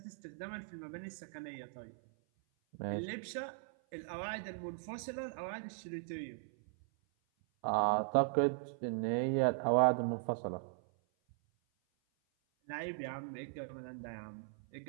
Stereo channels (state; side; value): silent; left; 52 dB below the other